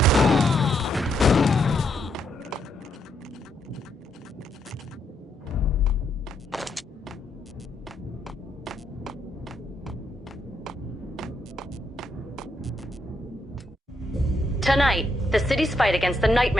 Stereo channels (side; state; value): both; normal; correlation 0.77